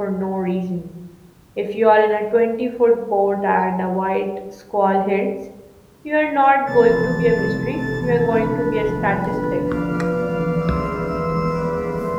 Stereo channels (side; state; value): both; identical; correlation 1.00